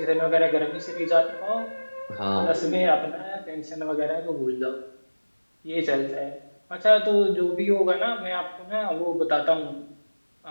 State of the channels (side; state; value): both; inverted; correlation -1.00